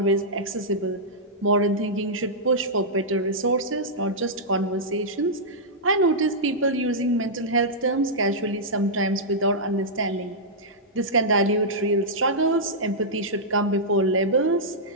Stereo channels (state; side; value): normal; both; correlation -0.11